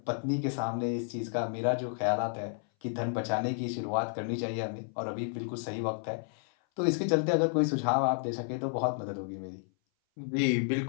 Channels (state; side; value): silent; right; 57 dB below the other